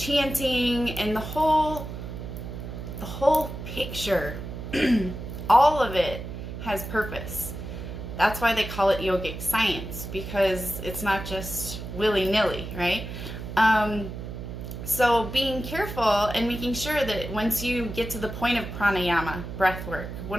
and the whole picture, all of it has purpose. That's why they call it yogic science, because it's not just willy-nilly, right? So being careful and making sure that once you get to the point of pranayama, breath work,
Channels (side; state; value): right; noise; hum, 8 dB below the sound